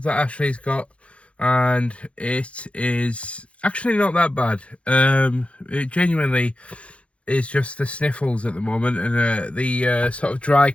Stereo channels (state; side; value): late; right; 0.062 ms